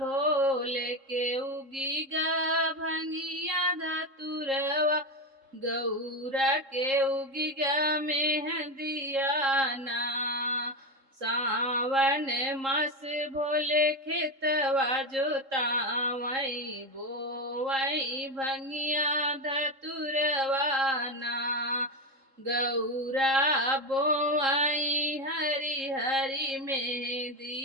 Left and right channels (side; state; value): left; late; 3.7 ms